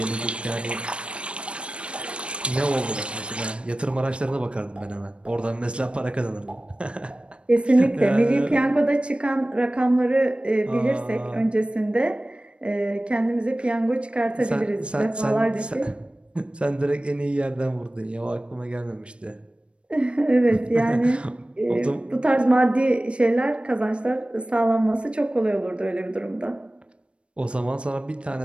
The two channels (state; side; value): late; left; 0.058 ms